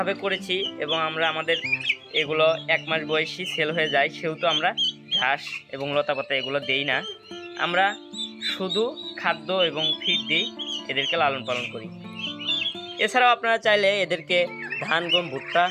করেছি এবং আমাদের এগুলো 1 মাস বয়সী সেল হয়ে যায়, সেহেতু আমরা ঘাস এবং লতাপাতা এগুলো দেই না। আমরা শুধু খাদ্য এবং ফিড দিই, এদেরকে লালন পালন করি। এছাড়াও আপনারা চাইলে এদেরকে ধান, গম, ভুট্টা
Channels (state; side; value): identical; both; correlation 1.00